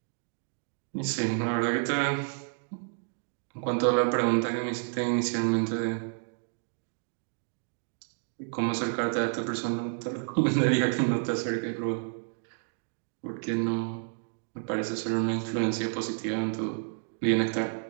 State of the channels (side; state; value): left; silent; digital silence